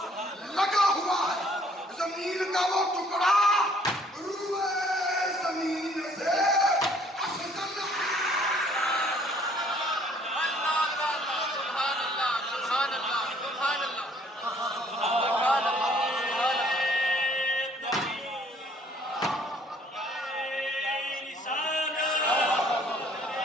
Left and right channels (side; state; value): both; normal; correlation 0.60